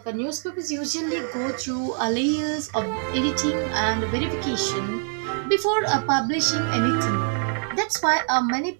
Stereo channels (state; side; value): silent; left; 58 dB below the other